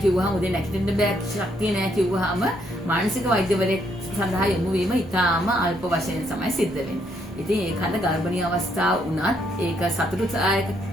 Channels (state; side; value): normal; both; correlation 0.73